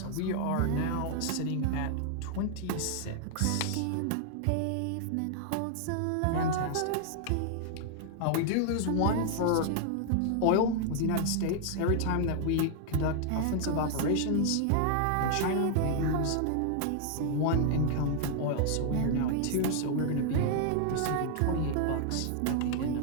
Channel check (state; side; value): different; both; correlation 0.00